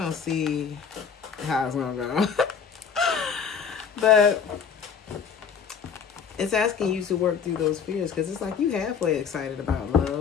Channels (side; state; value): right; quieter; 6.7 dB